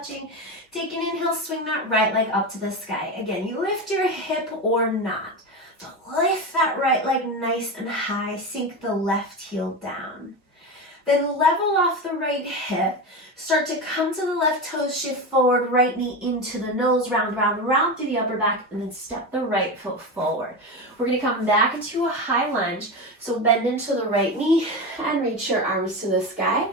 Take an inhale, swing that right leg up to the sky. Again, you lift your hip or not. So lift that right leg nice and high, sink the left heel down. Then level off the right hip, start to come to the left toes, shift forward, right knee into the nose, round, round, round through the upper back, and then step the right foot forward. We're gonna come back into a high lunge, so bend into the right knee and reach your arms to the sky.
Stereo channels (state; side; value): normal; both; correlation 0.20